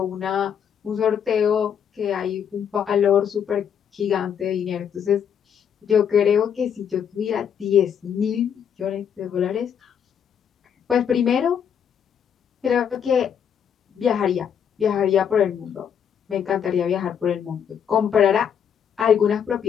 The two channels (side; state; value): right; quieter; 8.2 dB